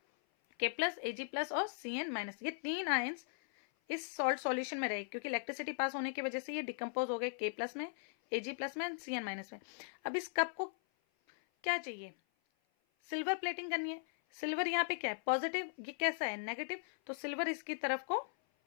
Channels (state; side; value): silent; right; 52 dB below the other